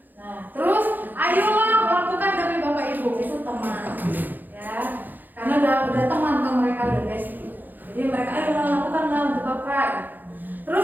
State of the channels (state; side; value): late; left; 0.087 ms